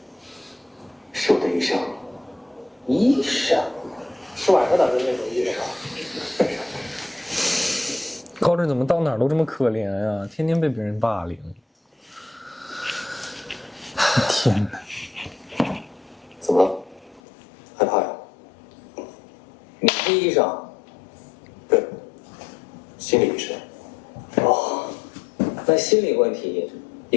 是我的医生。医生？是晚上打的那种医生啊？高震怎么到哪儿都这么可怜呀、天天被别人霸凌。天哪！怎么了？害怕呀？你是医生？对，心理医生。哦，那心理问题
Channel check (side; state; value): right; drops out; at 17.2 s